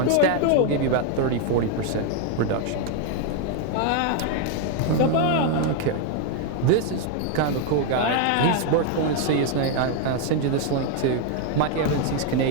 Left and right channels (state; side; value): different; both; correlation 0.00